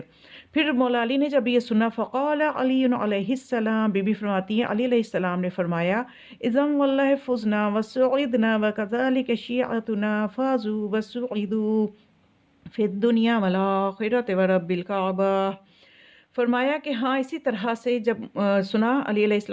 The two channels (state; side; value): identical; both; correlation 1.00